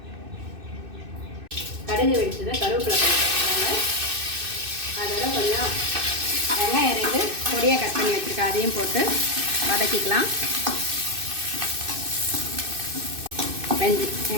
கடுகு வெடிச்சதை கருவேப்பிலை போட்டுக்கிறாங்க. அதோட கொஞ்சம் வெங்காயம் 2 பொடியாக கட் பண்ணி வச்சுருக்கேன், அதையும் போட்டு வதக்கிக்கலாம்.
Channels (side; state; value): left; late; 2.6 ms